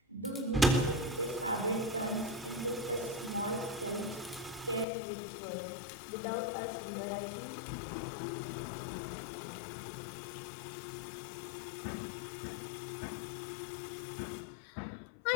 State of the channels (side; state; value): right; drops out; at 4.9 s